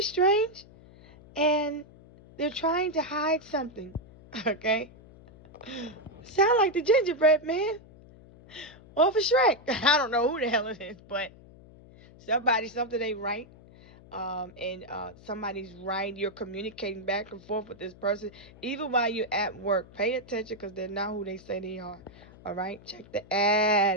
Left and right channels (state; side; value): noise; left; hum, 22 dB below the sound